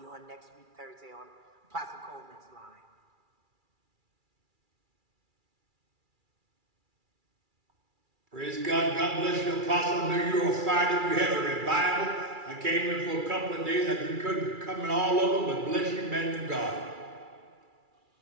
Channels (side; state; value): left; late; 2.3 ms